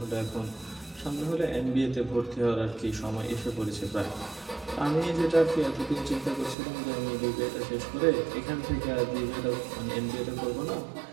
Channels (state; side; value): drops out; left; at 6.6 s